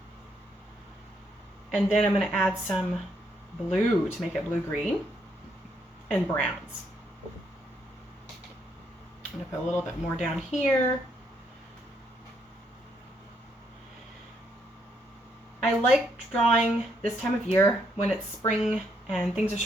And then I'm going to add some blue to make it blue-green and browns. I'm going to put a little bit more down here. I like drawing this time of year when it's spring and things are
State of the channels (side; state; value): both; normal; correlation 0.74